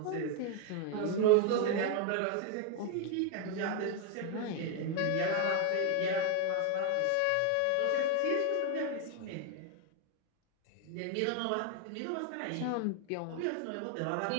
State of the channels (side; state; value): both; different; correlation 0.01